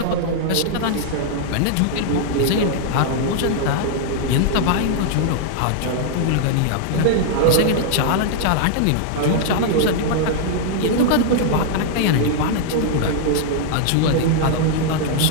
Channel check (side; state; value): both; different; correlation -0.01